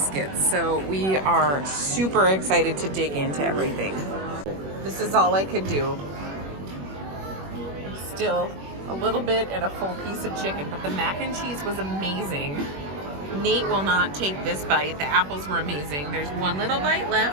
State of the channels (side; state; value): left; late; 21 ms